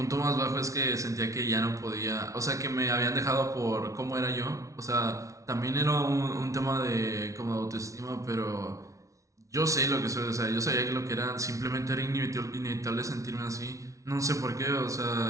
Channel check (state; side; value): late; left; 0.15 ms